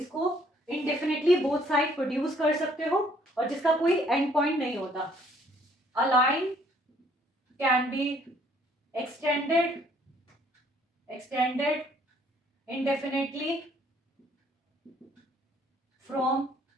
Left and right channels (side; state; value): both; normal; correlation 0.63